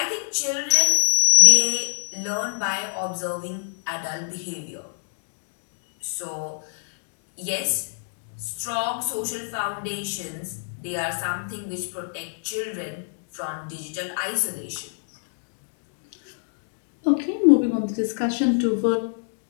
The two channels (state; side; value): silent; right; digital silence